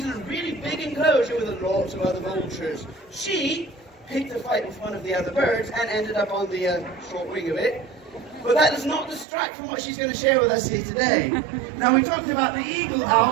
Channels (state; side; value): drops out; left; at 9.2 s